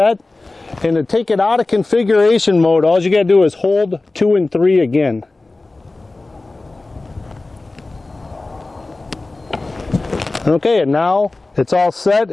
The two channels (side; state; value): right; quieter; 3.2 dB